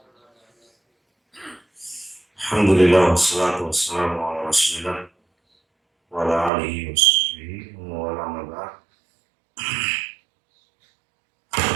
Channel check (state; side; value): drops out; left; at 6.5 s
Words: Alhamdulillah wassalatu wassalamu ala rasulillah wa ala alihi wa sahbihi wa ala man ba'd.